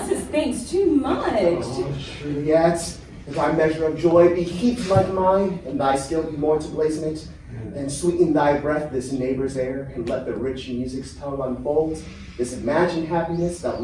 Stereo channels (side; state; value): both; identical; correlation 1.00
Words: thanks, too much. Juliet, if thy measure of joy be heaped like mine, and thy skill be more to blazon it, then sweeten thy breath this neighbor's air, and let the rich music's tone unfold this imagined happiness that